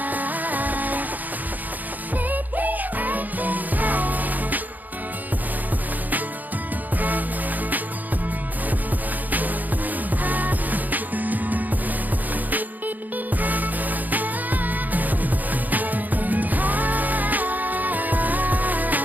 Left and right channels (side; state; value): left; late; 0.083 ms